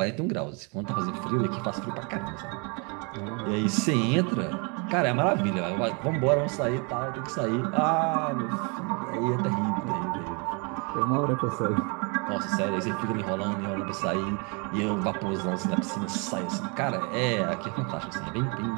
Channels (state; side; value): quieter; left; 33.2 dB